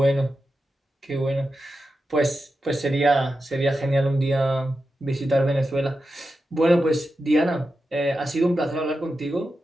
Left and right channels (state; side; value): normal; both; correlation 0.90